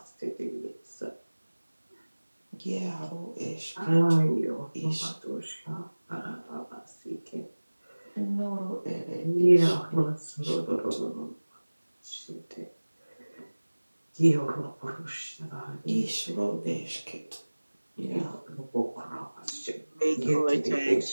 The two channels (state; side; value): inverted; both; correlation -1.00